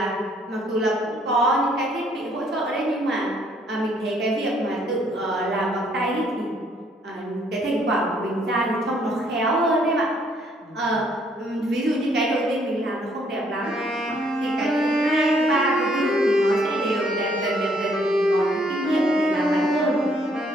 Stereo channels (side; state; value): both; normal; correlation 0.66